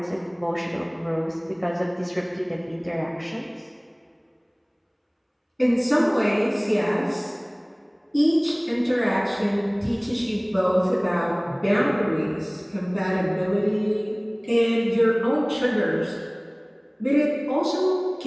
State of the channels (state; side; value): identical; both; correlation 1.00